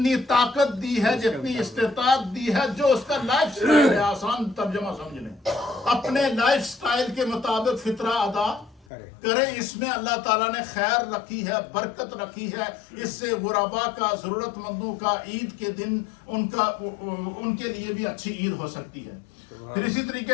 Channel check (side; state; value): right; drops out; at 8.8 s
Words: طاقت دی ہے، جتنی استطاعت دی ہے، جو اس کا لائف سٹائل ہے، آسان ترجمہ سمجھ لیں، اپنے لائف سٹائل کے مطابق فطرہ ادا کریں. اس میں اللہ تعالیٰ نے خیر رکھی ہے، برکت رکھی ہے. اس سے غربا کا، ضرورت مندوں کا عید کے دن ان کے لیے بھی اچھی عید ہو سکتی ہے. پھر اسی